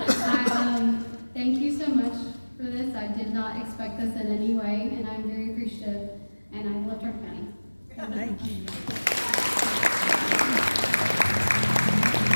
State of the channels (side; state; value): both; inverted; correlation -1.00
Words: Thank you so much for this. I did not expect this in any way, and I'm very appreciative, and I love Turner County. Thank you.